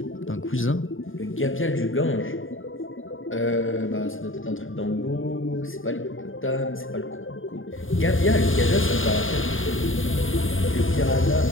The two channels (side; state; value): right; late; 0.58 ms